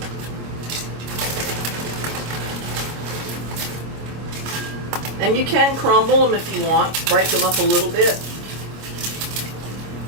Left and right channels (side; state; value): left; late; 25 ms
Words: And you can crumble them if you want, break them up a little bit.